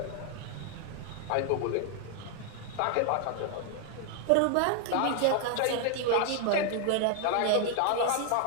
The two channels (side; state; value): both; different; correlation 0.00